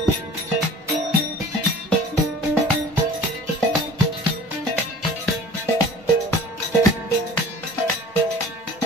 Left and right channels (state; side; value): normal; both; correlation 0.45